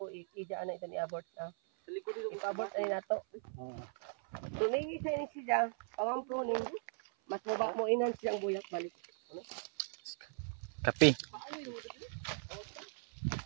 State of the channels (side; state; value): left; silent; 52 dB below the other